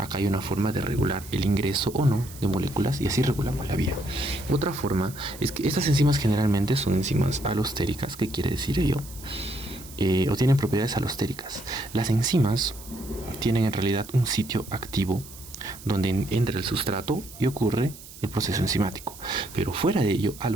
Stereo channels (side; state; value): right; noise; hiss, 17 dB below the sound